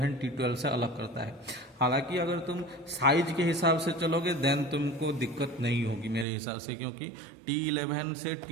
T12 से अलग करता है। हालांकि अगर तुम साइज के हिसाब से चलोगे देन तुमको दिक्कत नहीं होगी मेरे हिसाब से, क्योंकि T11 से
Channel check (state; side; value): drops out; left; at 6.2 s